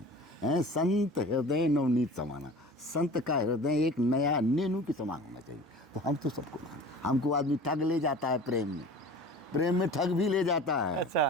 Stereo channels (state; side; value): normal; both; correlation 0.40